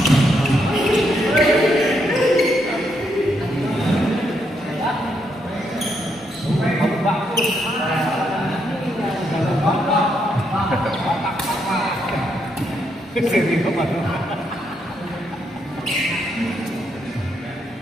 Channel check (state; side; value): normal; both; correlation 0.77